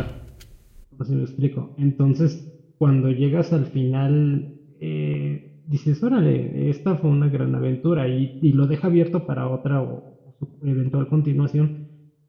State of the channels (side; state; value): both; identical; correlation 1.00